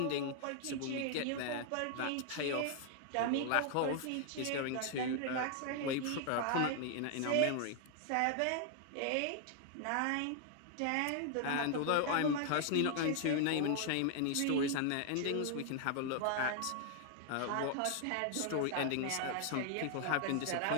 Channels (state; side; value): different; both; correlation 0.00